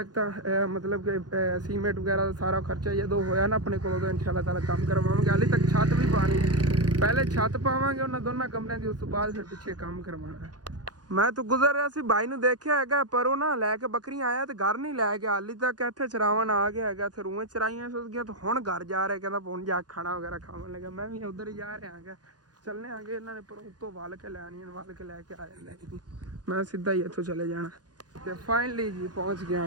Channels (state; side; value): late; left; 0.69 ms